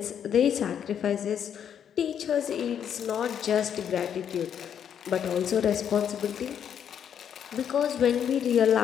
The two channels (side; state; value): right; quieter; 8.7 dB